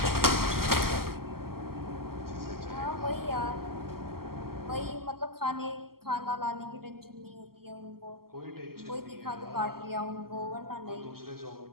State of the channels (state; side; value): late; left; 0.93 ms